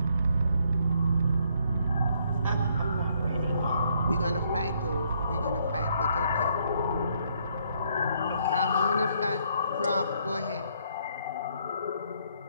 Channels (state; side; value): inverted; both; correlation -0.69